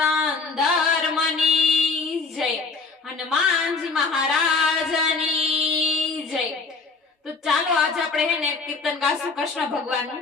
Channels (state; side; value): quieter; right; 4.3 dB